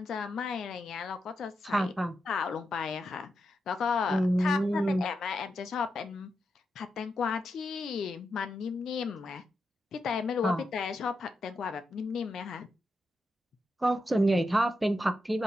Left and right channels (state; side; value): normal; both; correlation 0.86